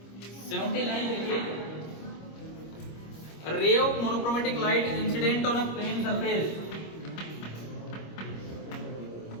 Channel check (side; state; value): right; late; 25 ms